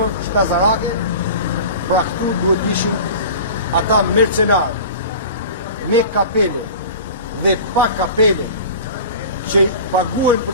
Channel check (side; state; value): both; inverted; correlation -0.36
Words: shkazarake. Pra këtu duhet ishin ata mercenarë me kapele dhe pa kapele që paguajnë